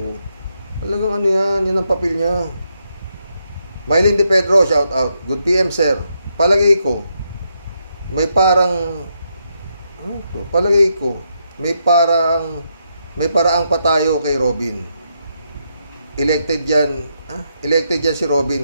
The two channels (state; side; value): inverted; both; correlation -0.80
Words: Talagang yan ang papel niya. Mylene De Pedro, shout out. Good PM, sir. Palagay ko, may parang may paraang pa tayo kay Robin. Elected yan si Robin,